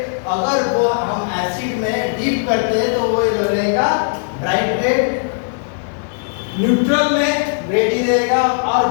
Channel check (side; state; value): right; silent; digital silence